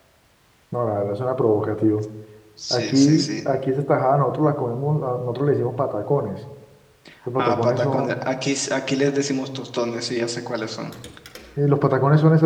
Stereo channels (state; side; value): identical; both; correlation 1.00